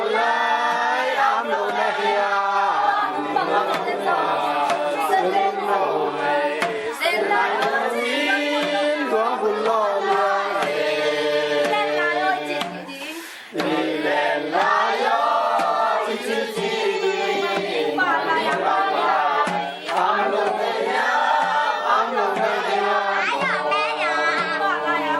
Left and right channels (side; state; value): both; identical; correlation 1.00